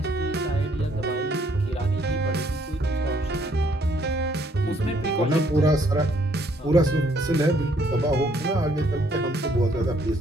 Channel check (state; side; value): normal; both; correlation 0.66